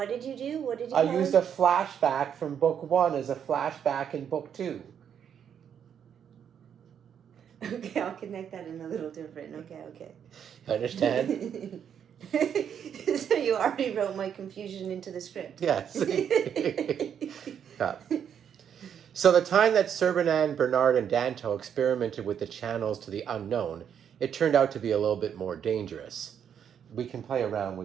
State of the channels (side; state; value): left; quieter; 8.4 dB